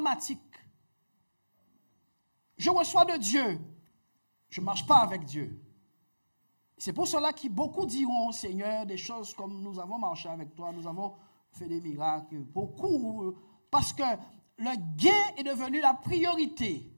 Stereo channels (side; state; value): both; inverted; correlation -1.00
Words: Je reçois de Dieu, je ne marche pas avec Dieu. C'est pour cela que beaucoup diront, Seigneur, des choses comme nous avons marché avec toi, nous avons fait des miracles, beaucoup, parce que le gain est devenu la priorité